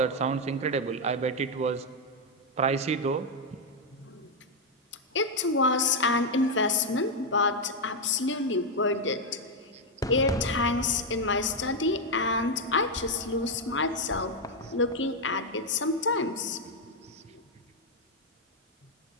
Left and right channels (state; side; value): normal; both; correlation 0.03